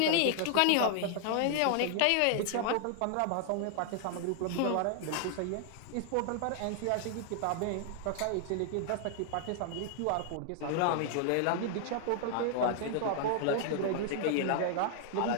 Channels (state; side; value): different; both; correlation 0.00